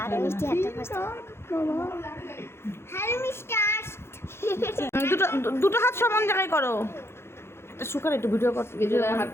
মিষ্টি হাতে ফাস্ট। Hello mister. দুটো হাত সমান জায়গায় করো। এটা শুকার একটু ভিডিও করতে ভিডিও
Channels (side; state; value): right; late; 0.12 ms